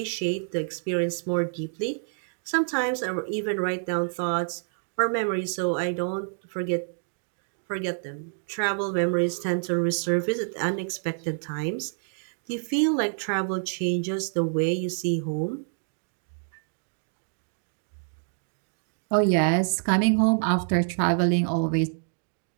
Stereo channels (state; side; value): silent; left; digital silence